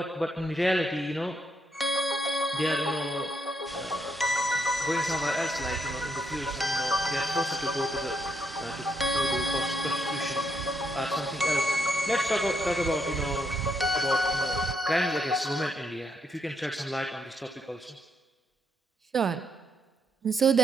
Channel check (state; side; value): normal; both; correlation 0.77